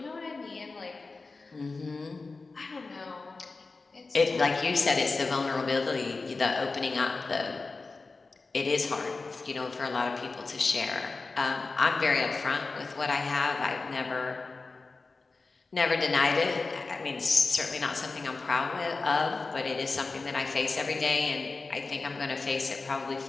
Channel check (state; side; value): quieter; right; 3.9 dB